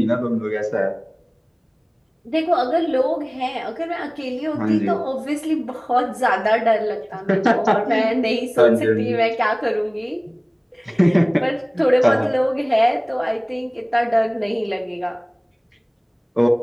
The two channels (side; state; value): both; identical; correlation 1.00